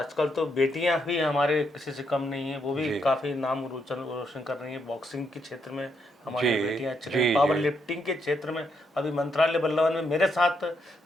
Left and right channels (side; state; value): both; normal; correlation 0.78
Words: तो बेटियां भी हमारे किसी से कम नहीं है, वो भी जी काफ़ी नाम रोशन कर रही हैं। बॉक्सिंग के क्षेत्र में हमारी जी बेटियां अच्छी रही, जी पावर जी लिफ्टिंग के क्षेत्र में अभी मंत्रालय बल्लवन में मेरे साथ,